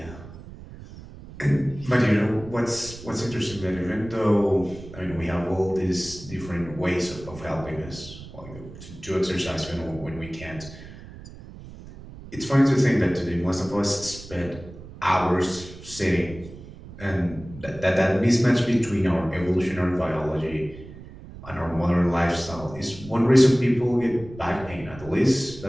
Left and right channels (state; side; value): noise; right; rumble, 16 dB below the sound